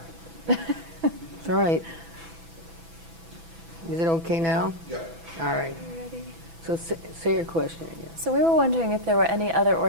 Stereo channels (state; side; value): late; left; 6.0 ms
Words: It's all right. Is it okay now? Yep. All right. Ready? So say your question again. So we were wondering if there were any other